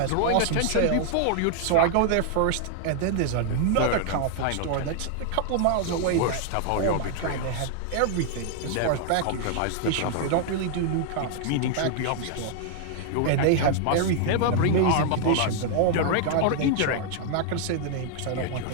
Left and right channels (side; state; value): both; different; correlation 0.00